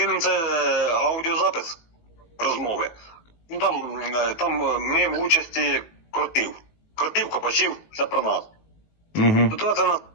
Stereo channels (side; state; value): right; late; 19 ms